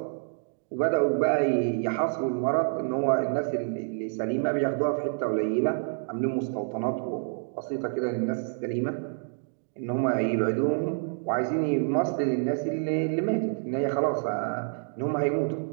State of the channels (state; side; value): silent; left; digital silence